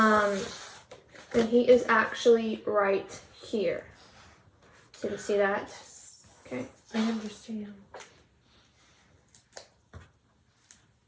And he is actually right here. So you see that? Okay. I understand.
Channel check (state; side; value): identical; both; correlation 1.00